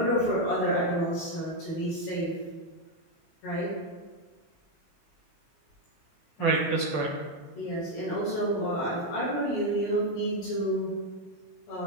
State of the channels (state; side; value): late; right; 19 ms